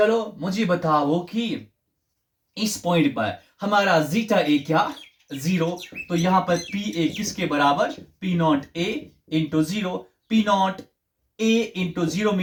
मुझे बताओ कि इस पॉइंट पर हमारा जीटा ए क्या, 0, तो यहां पर पी ए किसके बराबर, P not A into 0। P not A into 0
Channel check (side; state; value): both; identical; correlation 1.00